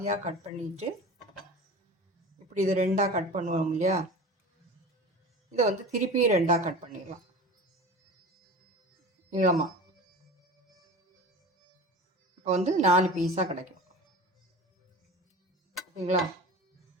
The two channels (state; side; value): normal; both; correlation 0.35